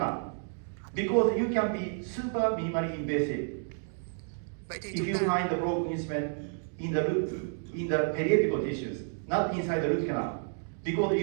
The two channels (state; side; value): silent; left; 57 dB below the other